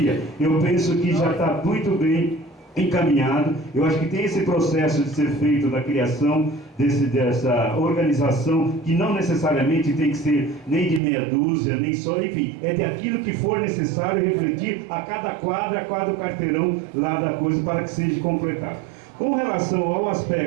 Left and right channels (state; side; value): drops out; left; at 11.0 s